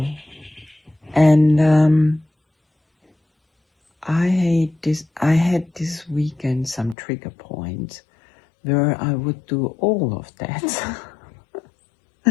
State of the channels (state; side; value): drops out; right; at 7.0 s